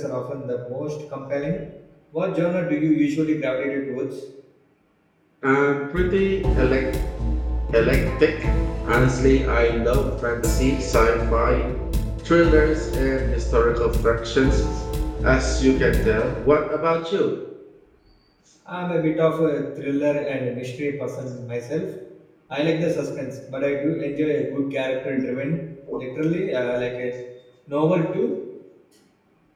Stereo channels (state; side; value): identical; both; correlation 1.00